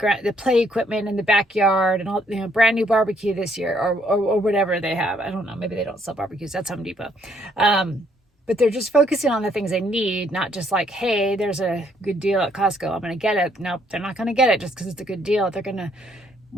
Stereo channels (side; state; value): both; normal; correlation 0.69